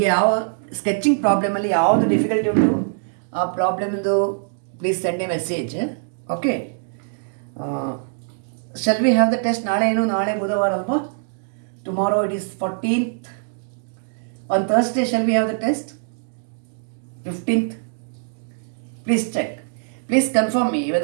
ಯಾವ sketching ಪ್ರಾಬ್ಲಮಲ್ಲಿ ಯಾವುದು difficulty ಉಂಟು ಆ ಪ್ರಾಬ್ಲಮ್ದು please send a message. Okay, shall we have the test? ನಾಳೆ ಬುಧವಾರ ಅಲ್ವಾ? Tomorrow it is 14th. On Thursday shall we have the test? 15th. Please check. Please confirm me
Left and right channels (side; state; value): left; silent; digital silence